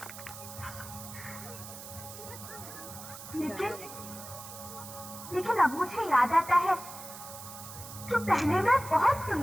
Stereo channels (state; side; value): noise; right; hiss, 13 dB below the sound